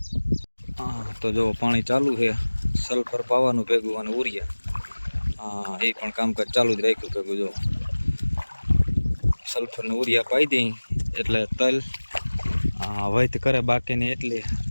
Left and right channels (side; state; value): both; inverted; correlation -1.00